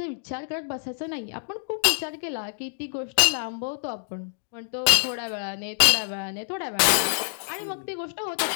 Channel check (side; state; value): right; silent; digital silence